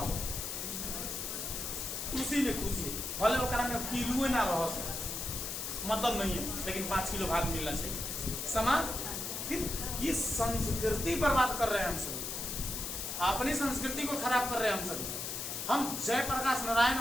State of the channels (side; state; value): left; noise; hiss, 4 dB below the sound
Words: उसी में खुशी है। भले वो में किलो ना रहो, मतलब नहीं है, लेकिन 5 किलो भात मिलना चाहिए। समाज फिर ये संस्कृति बर्बाद कर रहे हैं हम सभी, अपनी संस्कृति को खराब कर रहे हैं हम सभी। हम जयप्रकाश नारायण